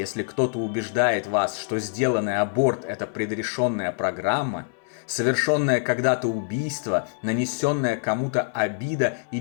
кто-то убеждает вас, что сделанный аборт – это предрешенная программа, совершенное когда-то убийство, нанесенная кому-то обида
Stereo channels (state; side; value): silent; right; 59 dB below the other